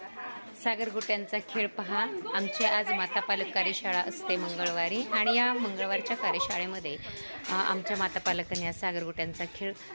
सागरगोट्यांचा खेळ पहा. आमची आज माता पालक कार्यशाळा असते मंगळवारी आणि या मंगळवारच्या कार्यशाळेमध्ये आमच्या माता पालकांनी या सागरगोट्यांचा खेळ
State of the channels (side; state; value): both; inverted; correlation -1.00